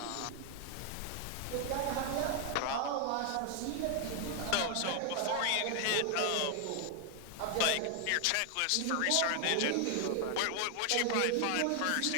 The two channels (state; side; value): different; both; correlation 0.00